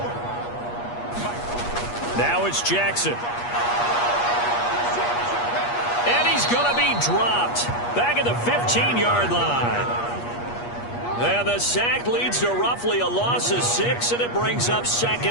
Now it's Jackson. And he's going to be dropped back at the 15-yard line. And the sack leads to roughly a loss of 6, and it brings up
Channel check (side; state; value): right; late; 8.4 ms